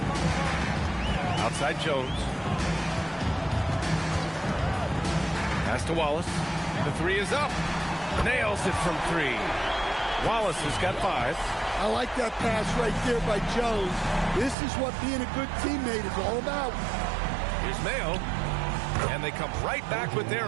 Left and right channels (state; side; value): drops out; left; at 14.6 s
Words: Outside Jones. Pass to Wallace. The 3 is up. Nails it from 3. Wallace has got 5. I like that pass right there by Jones. This is what being a good teammate is all about. Here's Mayo. And they come right back with